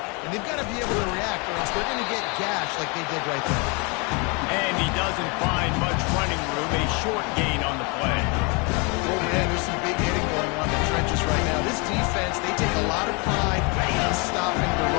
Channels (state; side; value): quieter; right; 31.3 dB